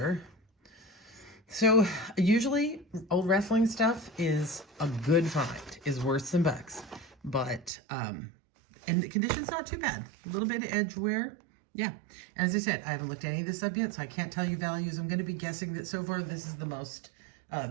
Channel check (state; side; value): drops out; left; at 7.7 s